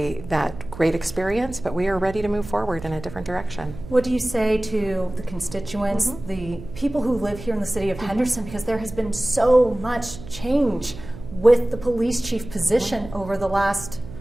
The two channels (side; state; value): right; noise; hum, 14 dB below the sound